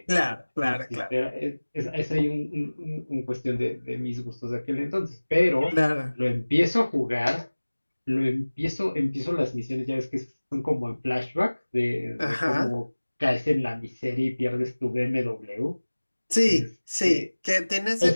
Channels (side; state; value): both; inverted; correlation -1.00